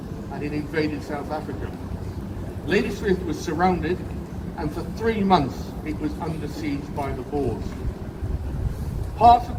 and it invaded South Africa. Ladysmith was surrounded, and for 3 months it was under siege by the Boers. Part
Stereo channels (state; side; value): identical; both; correlation 1.00